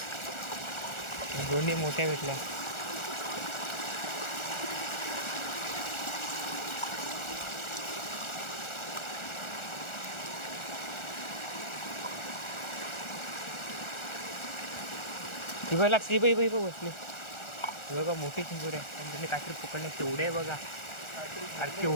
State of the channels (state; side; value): late; right; 1.4 ms